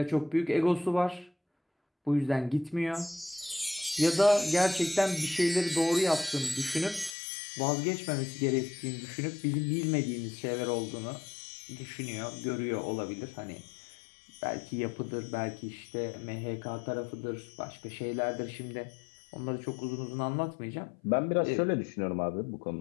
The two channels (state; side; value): drops out; right; at 7.2 s